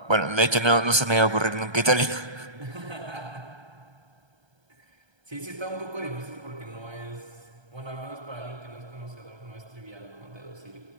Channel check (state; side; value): late; left; 1.3 ms